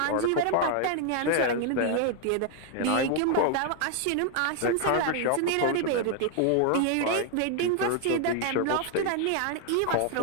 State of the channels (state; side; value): different; both; correlation 0.00